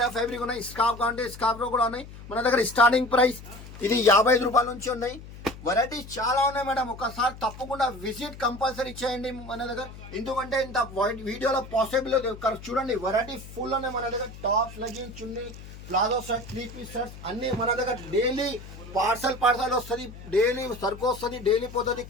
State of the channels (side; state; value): left; noise; hum, 15 dB below the sound